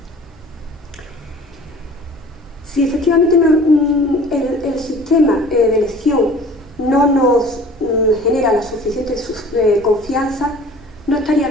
Si efectivamente el sistema de elección no nos genera la suficiente confianza, no estaría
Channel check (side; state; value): both; normal; correlation 0.46